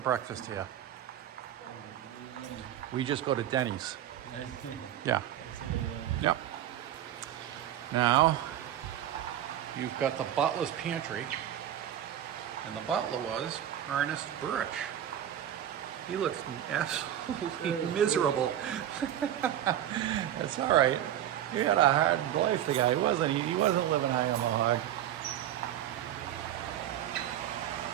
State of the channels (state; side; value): quieter; left; 11.2 dB